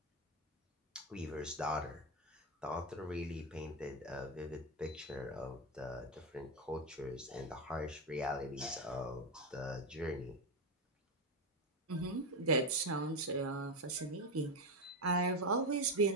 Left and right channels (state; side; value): normal; both; correlation 0.12